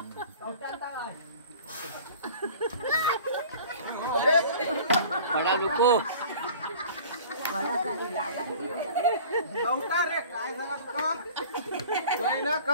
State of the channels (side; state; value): both; inverted; correlation -0.44